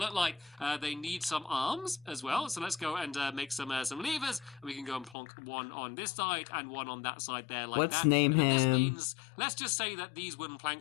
like. They need some arms as well. So let's go and make some levers. We can go and plonk one on this side and one on that side there like let's that. Name him. This means, let's just say that these wooden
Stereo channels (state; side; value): drops out; right; at 5.2 s